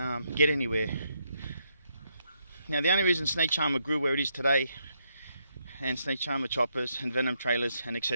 get anywhere. Now the only reason Snake Charmer grew where it is today, and Snake Charmer choppers and Venom trailers and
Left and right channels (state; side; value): inverted; both; correlation -0.77